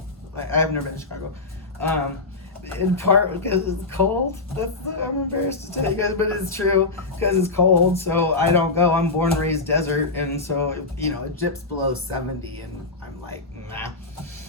I've never been to Chicago. In part because it's cold. I'm embarrassed to tell you guys, but it's true, because it's cold, so I don't go. I'm born and raised desert, and so, it dips below 70, and I'm like, nah.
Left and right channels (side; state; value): right; quieter; 3.6 dB